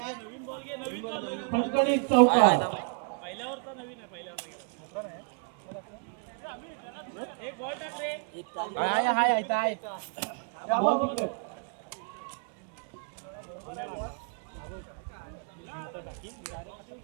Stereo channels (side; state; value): left; quieter; 37.2 dB